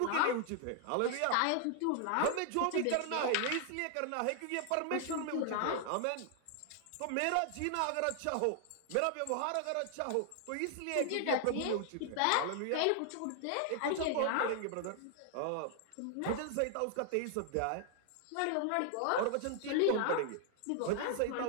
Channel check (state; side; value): different; both; correlation 0.00